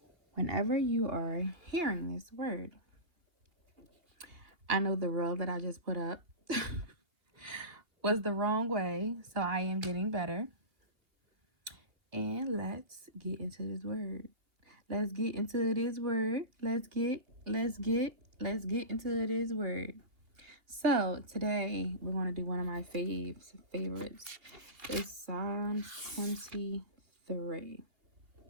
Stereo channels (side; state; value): left; late; 2.8 ms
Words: Whenever you are hearing this word, I know the reel that I just put up was the wrong way, so I am getting better. And let's get into this word. Let's get into this word. Let's get into this word. So today we're going to do one of my favorites. It's Psalms 23.